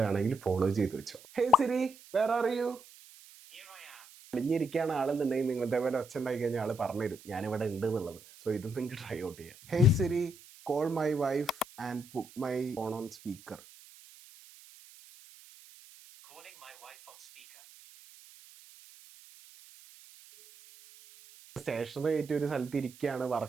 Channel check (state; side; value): noise; right; hiss, 21 dB below the sound